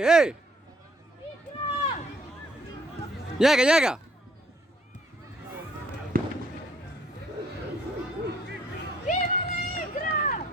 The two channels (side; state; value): both; normal; correlation 0.64